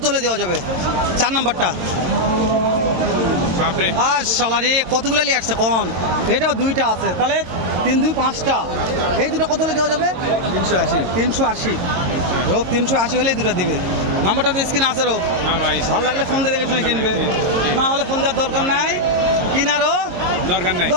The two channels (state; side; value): late; left; 22 ms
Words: হলে দেওয়া যাবে? 4 নাম্বারটা বাপরে আর শালারে কতগুলো নিয়ে আসছে কোন? এটাও দুইটা আছে, তাহলে 3 2 5টা। এই দুটো কত হলে দেওয়া যাবে? 380। 380। রোগ 380 হলেই দুটো দিবে। নাম্বারটা তো স্ক্রিনে আছে রোগ। হ্যাঁ ভাই ভালো লাগলে ফোন দিয়ে দেখে শুনে কিনবে, না হলে ফোন দেওয়ার দরকার নাই, কিনারও দরকার নাই।